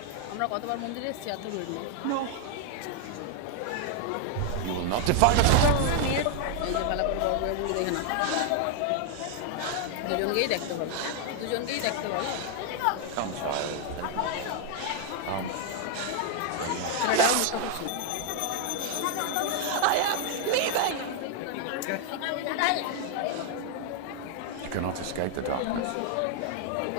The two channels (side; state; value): both; different; correlation 0.00